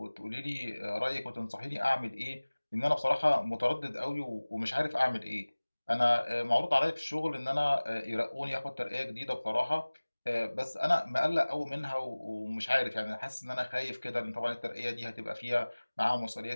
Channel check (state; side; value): inverted; both; correlation -1.00